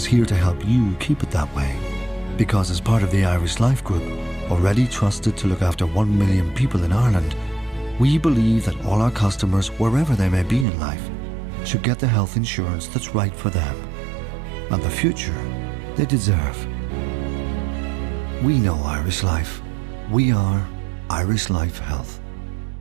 here to help you keep it that way. Because as part of the Irish Life Group, already trusted to look after 1 million people in Ireland, we believe that all our customers, wherever they may be in life, should get the health insurance that's right for them and the future they deserve. We know Irish Life. We are Irish Life Health.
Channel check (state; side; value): drops out; left; at 10.7 s